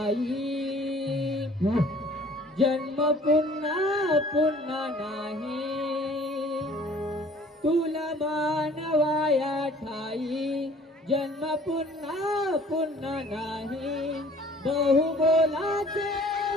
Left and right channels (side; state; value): both; normal; correlation 0.52